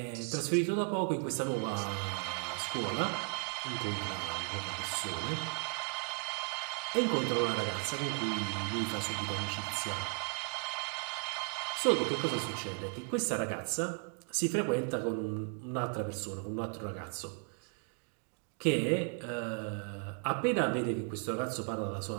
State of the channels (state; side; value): quieter; left; 35.8 dB